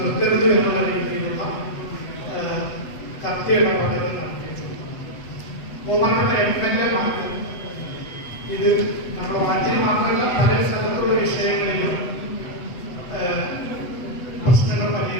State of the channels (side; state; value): right; late; 8.0 ms